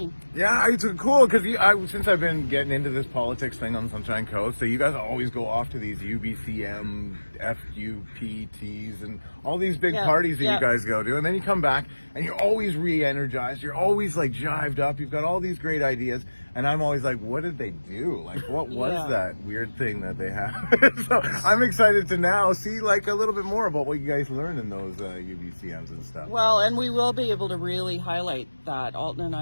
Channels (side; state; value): both; inverted; correlation -1.00